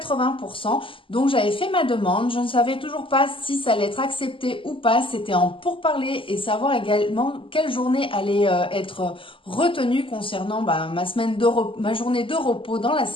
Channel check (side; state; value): right; late; 0.25 ms